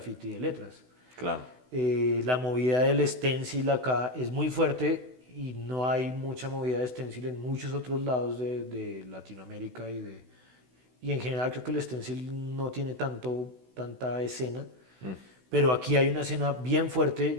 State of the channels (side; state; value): left; late; 16 ms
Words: de letras. Claro. La movida del stencil acá es muy fuerte y no hay mucha movida de stencil en muchos otros lados de Latinoamérica y en general creo que el stencil no tiene tanta escena, pero aquí hay una escena bien fuerte,